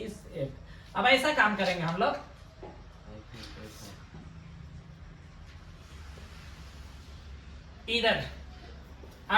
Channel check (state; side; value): identical; both; correlation 1.00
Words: अब ऐसा काम करेंगे हम लोग, इधर